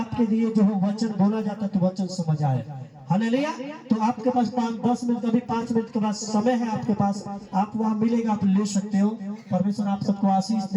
लिए जो है वचन बोला जाता है तो वचन समझ आए। हालेलुया। तो आपके पास 5-10 मिनट, कभी 5 मिनट के बाद समय है आपके पास, आप वहां मिलेगा, आप ले सकते हो। परमेश्वर आप सबको आशीष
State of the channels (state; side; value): identical; both; correlation 1.00